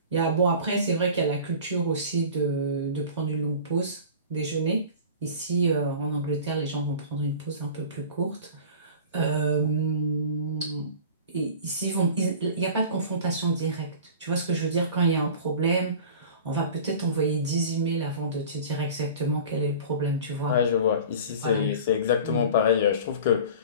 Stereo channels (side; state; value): both; inverted; correlation -0.39